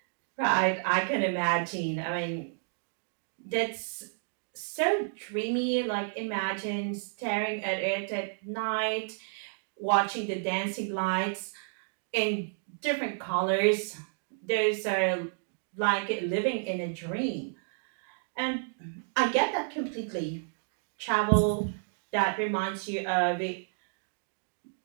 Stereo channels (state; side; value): silent; left; digital silence